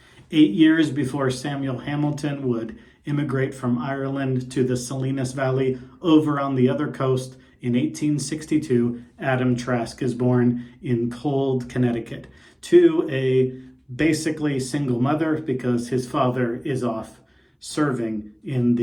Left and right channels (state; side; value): identical; both; correlation 1.00